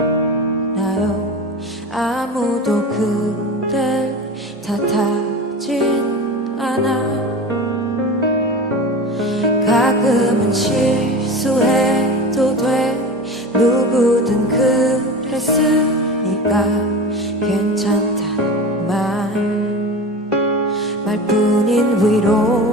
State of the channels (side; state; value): both; normal; correlation 0.30